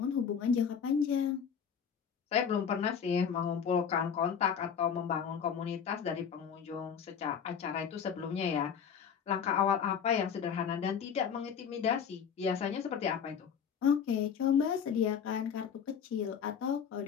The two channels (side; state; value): right; quieter; 7.3 dB